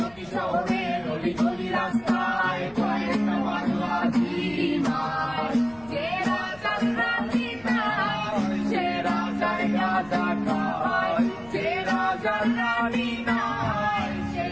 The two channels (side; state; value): left; noise; rumble, 24 dB below the sound